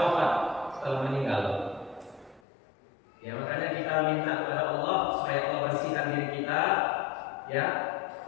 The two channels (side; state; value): right; drops out; at 2.4 s